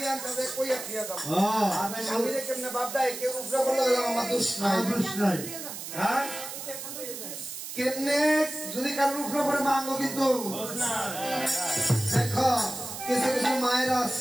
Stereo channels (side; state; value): right; noise; hiss, 9 dB below the sound